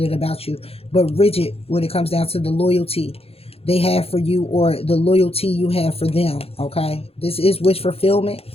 about you, but rigid when it comes down to the loyalty they have for you or the loyalty you have for them, okay? This is wish fulfillment.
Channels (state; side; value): late; right; 0.29 ms